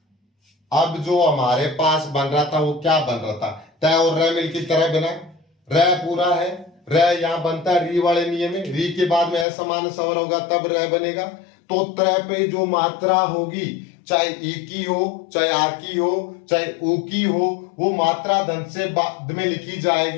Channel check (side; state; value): right; drops out; at 9.5 s